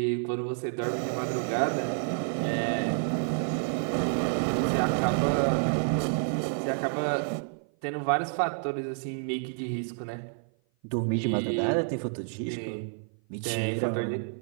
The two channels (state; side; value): silent; left; 55 dB below the other